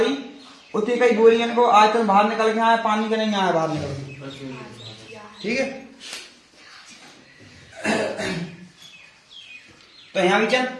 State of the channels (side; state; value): both; identical; correlation 1.00